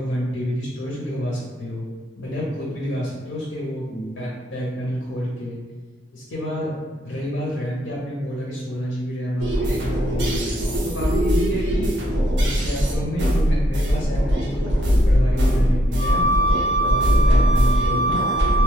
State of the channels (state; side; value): normal; both; correlation 0.71